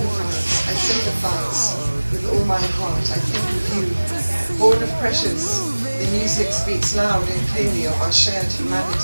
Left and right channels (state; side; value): inverted; both; correlation -1.00